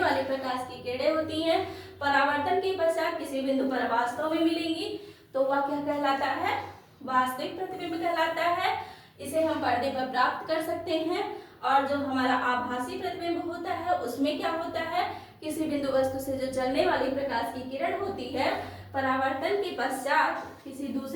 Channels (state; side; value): identical; both; correlation 1.00